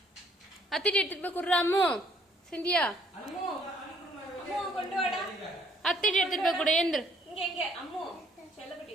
அத்திட்டு எடுத்துட்டு போய் குடுறா அம்மு. சிந்தியா அத்திட்டு எடுத்துட்டு போய் கொடு. ஏந்திரு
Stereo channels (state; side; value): normal; both; correlation 0.63